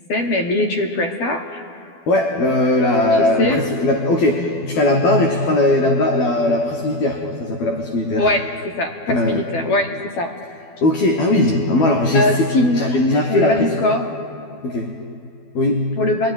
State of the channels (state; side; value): late; right; 12 ms